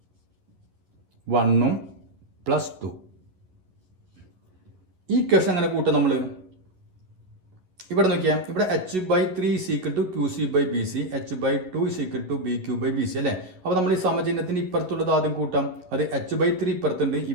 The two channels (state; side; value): late; left; 11 ms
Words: 1 + 2. ഈ ഇക്വേഷൻ അങ്ങനെ കൂട്ടാം നമ്മൾ. ഇവിടെ നോക്കിയാൽ ഇവിടെ H by 3 is equal to Q C by B C, H by 2 is equal to B Q by B C അല്ലേ? അപ്പോൾ നമ്മൾ ഈ സമചിഹ്നത്തിന് ഇപ്പുറത്തുള്ളത് ആദ്യം കൂട്ടാം. അത് എച്ച് ബൈ 3 ഇപ്പുറത്തുണ്ട്,